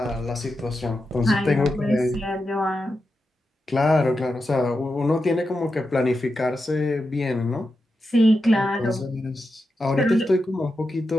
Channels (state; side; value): normal; both; correlation 0.89